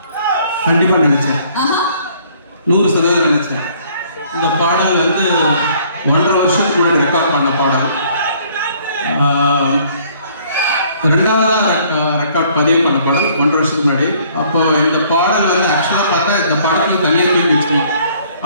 கண்டிப்பா நினைச்சேன், 100% நினைச்சேன். இந்த பாடல் வந்து 1.5 வருஷத்துக்கு முன்னாடி ரெக்கார்ட் பண்ண பாடல். ரெண்டாவதா ரெக்கார்ட் பதிவு பண்ண பாடல் 1.5 வருஷத்துக்கு முன்னாடி. அப்போ இந்த பாடல் வந்து ஆக்சுவலா பார்த்தா இந்த படத்துல தனியாக தூக்கி வச்சுக்கணும்.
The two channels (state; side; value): inverted; both; correlation -0.60